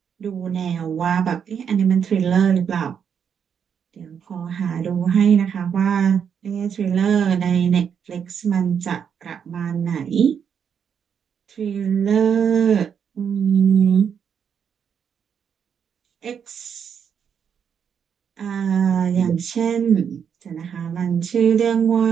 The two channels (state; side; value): quieter; left; 7.5 dB